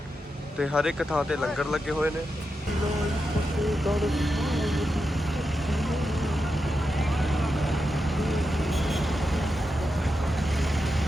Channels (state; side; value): normal; both; correlation 0.88